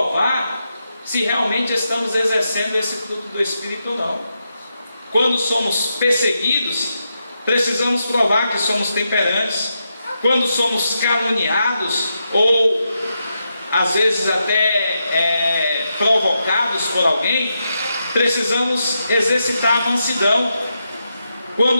se realmente estamos exercendo esse fruto do Espírito ou não. Quando somos perseguidos, precisamos provar que somos temperantes. Quando somos caluniados, ou às vezes até provocados por alguém, precisamos exercitar a mansidão.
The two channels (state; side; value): inverted; both; correlation -0.85